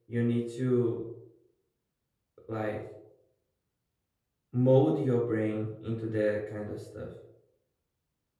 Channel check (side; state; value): both; identical; correlation 1.00